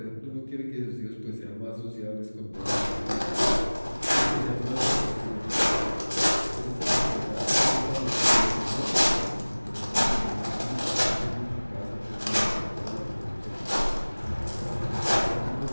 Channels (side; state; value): both; inverted; correlation -1.00